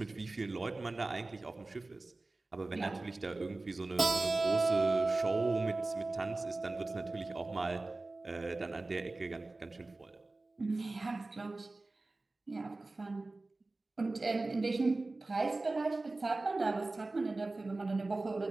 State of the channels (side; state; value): left; quieter; 3.2 dB